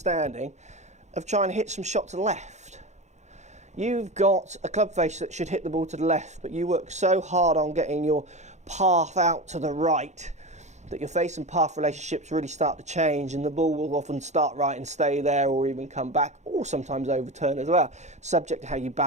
of trying to hit some shot to the left. You've got a club face that should hit the ball to the left, but you work so hard on getting your path out to the right that your face and path relationships really start to change, and the ball will often start right and stay there, or even come back, or sometimes overturn as well, subject to how you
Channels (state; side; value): late; left; 0.33 ms